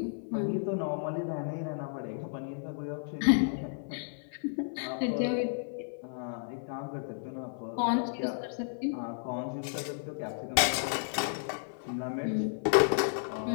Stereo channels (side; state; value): right; silent; 56 dB below the other